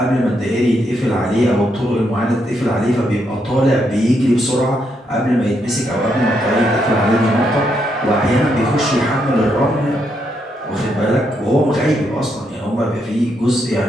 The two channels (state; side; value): normal; both; correlation 0.78